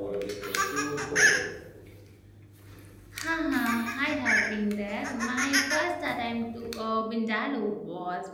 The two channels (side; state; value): both; identical; correlation 1.00